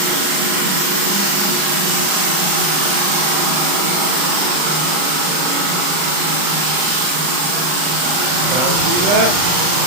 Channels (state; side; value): late; left; 39 ms